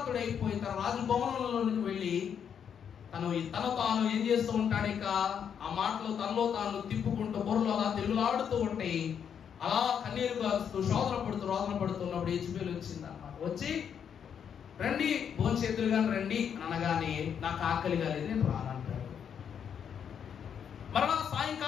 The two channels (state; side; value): quieter; right; 7.9 dB